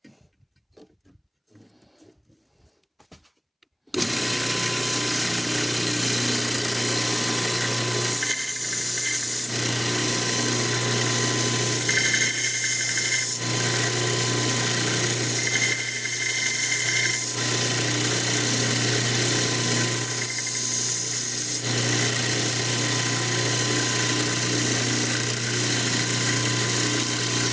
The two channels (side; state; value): both; identical; correlation 1.00